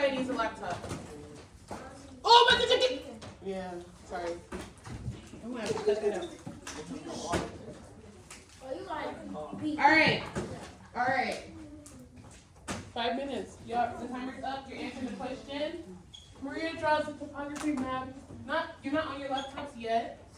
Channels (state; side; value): identical; both; correlation 1.00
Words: needs a laptop. Oh, my ticket! Yeah, sorry. I'm gonna have to cut that out. All right. 5 minutes. Y'all, the timer's up. You're answering the question. Maria draws a topography map. You're not on your laptops yet.